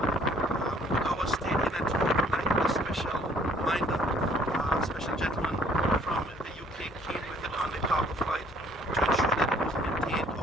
Our state in Antigua tonight, a special minder, a special gentleman from the UK came with it on the cargo flight to ensure that it was maintained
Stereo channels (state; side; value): normal; both; correlation 0.59